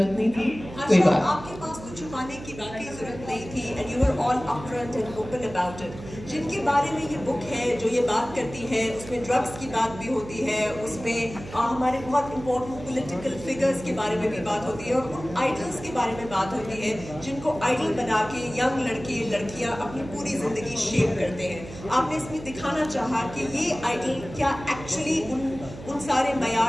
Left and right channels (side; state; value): right; noise; hum, 14 dB below the sound